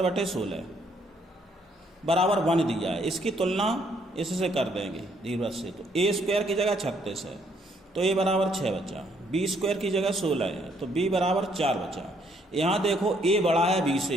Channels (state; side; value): normal; both; correlation 0.68